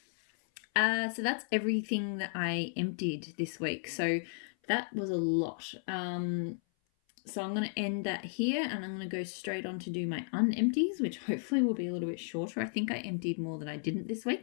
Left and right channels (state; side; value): silent; right; 55 dB below the other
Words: So that's everything that I emptied this week. So that was a lot. So I'm going to end that here, and I'm going to go straight on to do my unempties, which hopefully will be a little bit shorter. I think I emptied more than I didn't this